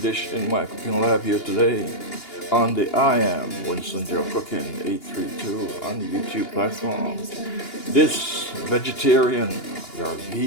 dish in my cooking lab here today on the I am Winston GeL Cooking 832 on the YouTube platform. This vegetarian or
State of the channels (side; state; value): right; late; 2.8 ms